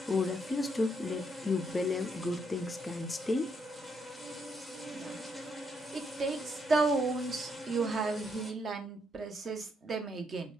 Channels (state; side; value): normal; both; correlation 0.75